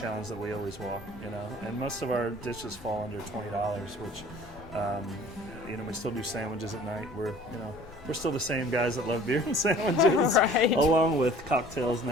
that we always walk, And most of our dishes fall under $20, which, we still do sandwiches at night. We're still the same guys that love beer and sandwiches, right, along with cocktails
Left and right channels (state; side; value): normal; both; correlation 0.49